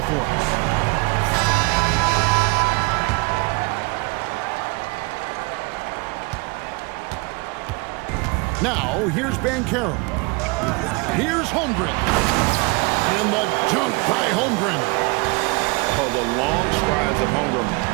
for us. Now, here's Banchero. Here's Holmgren. And the dunk by Holmgren. Oh, the long strides of Holmgren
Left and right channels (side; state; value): left; quieter; 27.7 dB